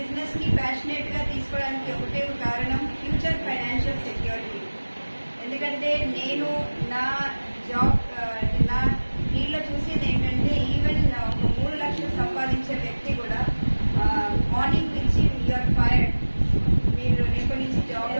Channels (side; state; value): both; inverted; correlation -1.00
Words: ని ప్యాషనేట్ గా తీసుకోవడానికి ఒకటే కారణం ఫ్యూచర్ ఫైనాన్షియల్ సెక్యూరిటీ. ఎందుకంటే నేను నా జాబ్ నా ఫీల్డ్లో చూసేది ఏంటంటే ఈవెన్ ఒక 3 లక్షలు సంపాదించే వ్యక్తి కూడా మార్నింగ్ నుంచి యూఆర్ ఫైర్డ్, మీరు రేపటి నుంచి జాబ్